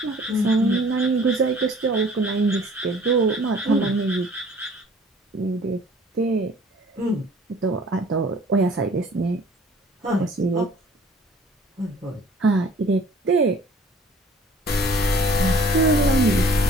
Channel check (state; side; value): normal; both; correlation 0.52